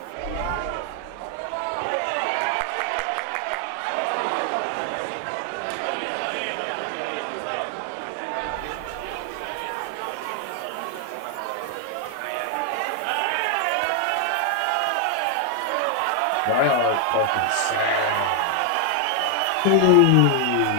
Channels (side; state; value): both; different; correlation 0.00